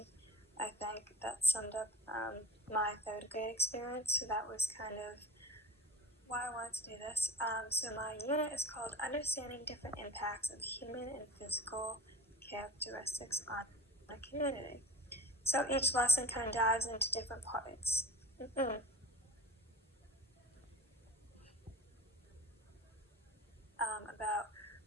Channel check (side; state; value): both; normal; correlation 0.35